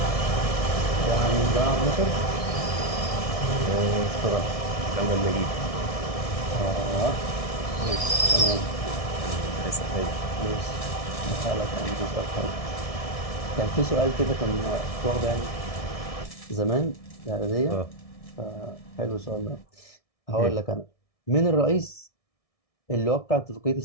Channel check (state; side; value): late; right; 1.6 ms